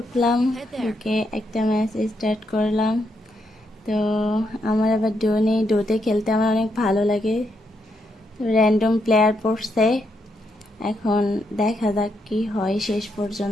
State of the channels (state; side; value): normal; both; correlation 0.79